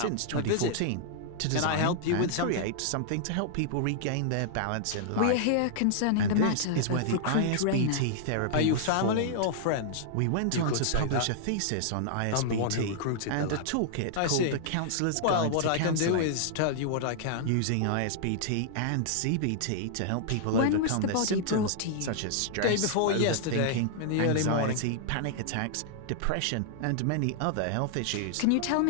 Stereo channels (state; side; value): different; both; correlation -0.01